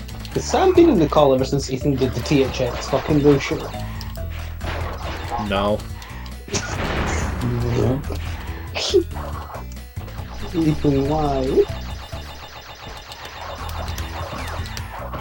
Has Sam been in the call ever since Ethan did the THX fucking bullshit? No. Ethan, why?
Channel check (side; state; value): both; identical; correlation 1.00